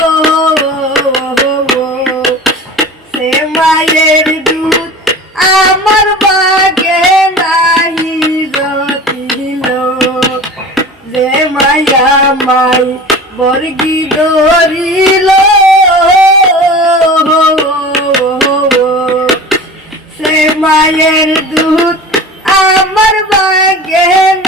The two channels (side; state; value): both; normal; correlation 0.36